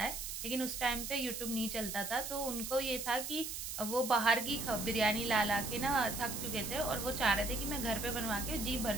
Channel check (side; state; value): right; noise; hiss, 5 dB below the sound